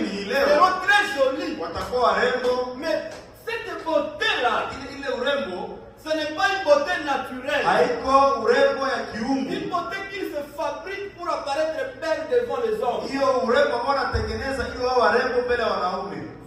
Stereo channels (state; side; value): identical; both; correlation 1.00